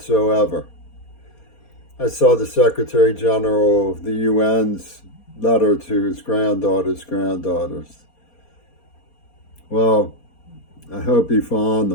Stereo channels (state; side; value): late; right; 4.2 ms